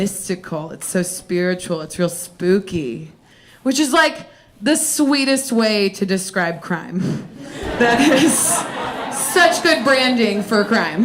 It's so spiritual. It's real spooky. Which is like the sweetest way to describe crime. That is such good branding for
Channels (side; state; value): both; identical; correlation 1.00